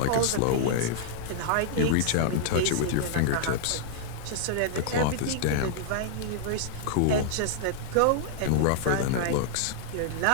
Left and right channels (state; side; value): different; both; correlation -0.01